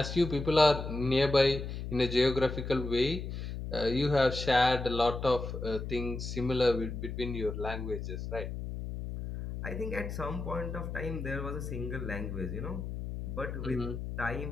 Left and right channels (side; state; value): left; noise; hum, 6 dB below the sound